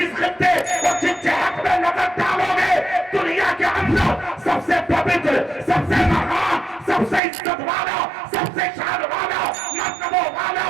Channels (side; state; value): left; drops out; at 7.2 s